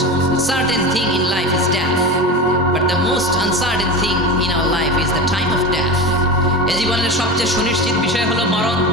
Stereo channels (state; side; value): normal; both; correlation 0.26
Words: certain thing in life is death, but the most uncertain thing in our life is the time of death. এই জীবনের সবচেয়ে সুনিশ্চিত বিষয় হলো মরণ,